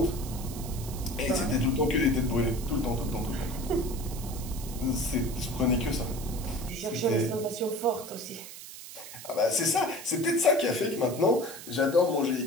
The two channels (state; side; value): noise; right; hiss, 13 dB below the sound